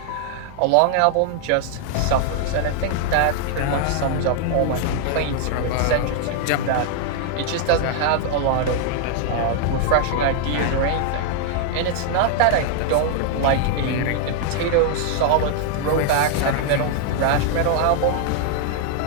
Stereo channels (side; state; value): both; different; correlation 0.00